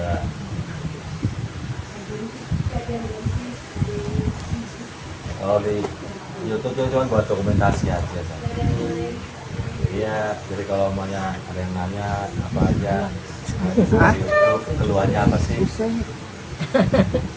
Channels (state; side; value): identical; both; correlation 1.00